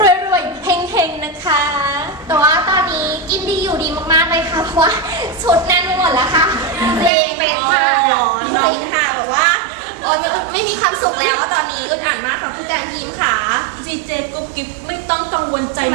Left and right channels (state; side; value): drops out; left; at 7.1 s